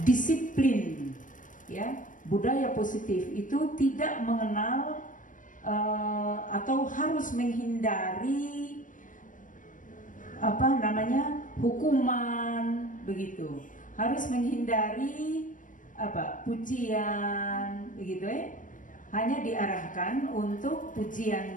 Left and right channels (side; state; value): right; late; 0.38 ms